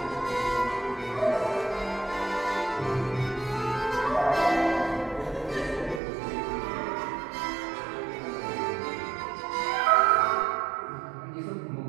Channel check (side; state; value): left; drops out; at 6.0 s